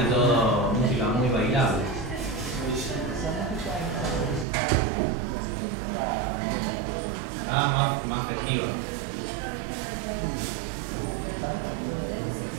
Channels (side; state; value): left; drops out; at 4.5 s